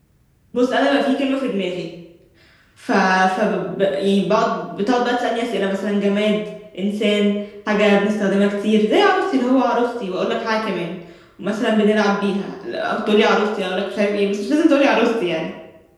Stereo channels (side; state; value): both; identical; correlation 1.00